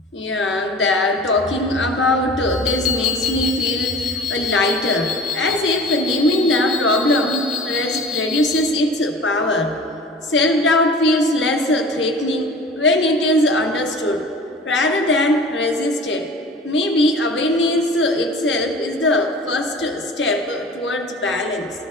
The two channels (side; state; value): both; normal; correlation 0.42